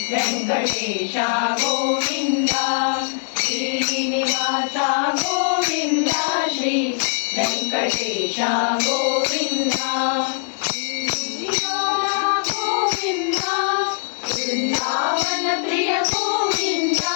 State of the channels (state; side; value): silent; right; 65 dB below the other